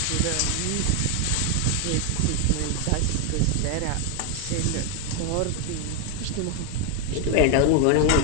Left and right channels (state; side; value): different; both; correlation 0.01